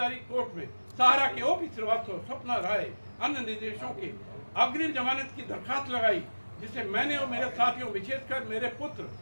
कोर्ट में सहारा के ओपी श्रीवास्तव, स्वप्ना राय, अन्य निर्देशों के अग्रिम जमानत की दरखास्त लगाई, जिसे मैंने और मेरे साथियों, विशेषकर मेरे पुत्र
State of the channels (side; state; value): both; inverted; correlation -1.00